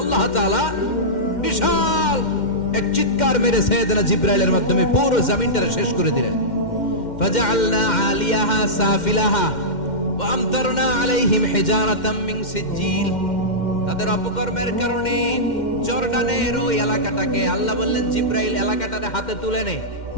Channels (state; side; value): late; right; 2.1 ms